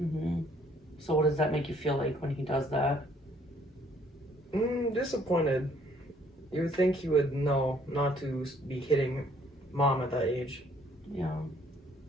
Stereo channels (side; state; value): both; normal; correlation 0.62